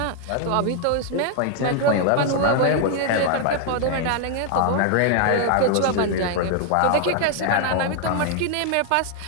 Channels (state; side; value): different; both; correlation 0.00